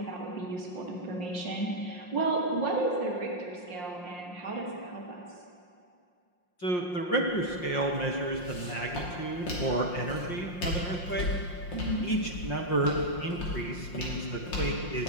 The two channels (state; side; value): late; right; 5.6 ms